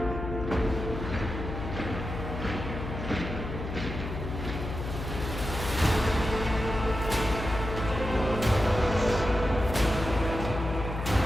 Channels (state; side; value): noise; left; hum, 6 dB below the sound